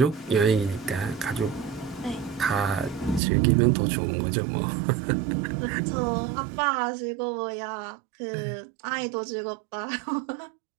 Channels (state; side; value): drops out; left; at 3.2 s